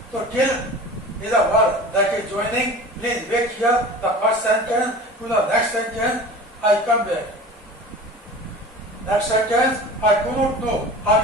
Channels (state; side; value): normal; both; correlation 0.37